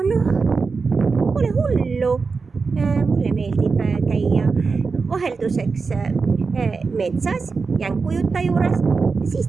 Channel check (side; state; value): left; quieter; 4.6 dB